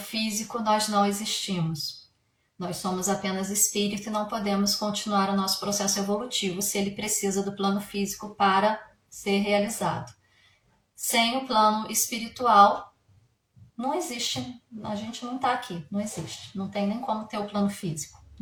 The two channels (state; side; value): identical; both; correlation 1.00